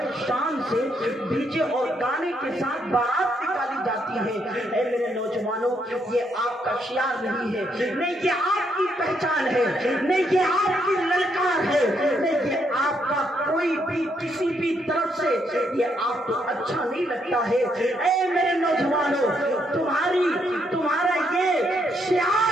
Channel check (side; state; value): both; normal; correlation 0.75